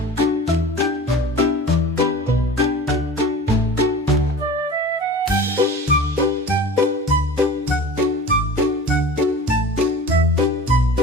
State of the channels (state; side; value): normal; both; correlation 0.38